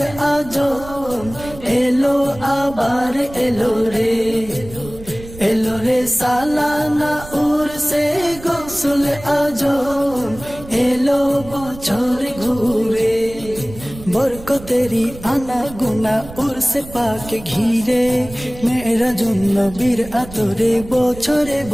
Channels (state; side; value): noise; right; rumble, 16 dB below the sound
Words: আজম এলো আবার এলো রে সালানা উরসে গৌসল আজম এলো বছর ঘুরে বরকতেরি আনা গুনা উরসে পাকে ঘিরে মেরা জন্য বীর আতরে বছরে